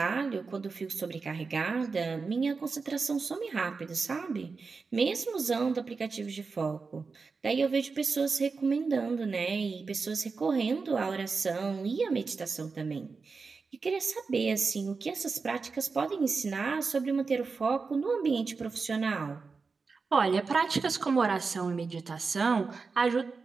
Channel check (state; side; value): quieter; left; 4.6 dB